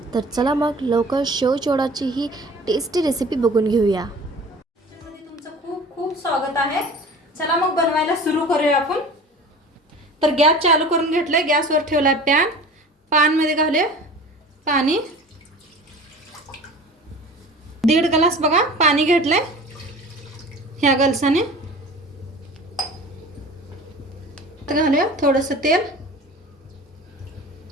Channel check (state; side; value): normal; both; correlation 0.41